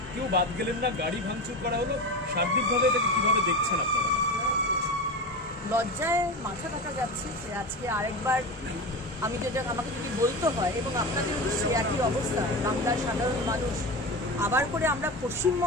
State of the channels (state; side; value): normal; both; correlation 0.24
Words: কেউ বাদ গেলেন না, গাড়ি ভাঙচুর করা হলো। সার্বিকভাবে এটাকে কিভাবে দেখছেন আপনারা? লজ্জায় মাথা কাটা যাচ্ছে যে আজকে আরেকবার আমাকে যদি বলতে হয়, এবং আপনাদের সে একই অবস্থা, বাংলার সাধারণ মানুষ আবার করে আমরা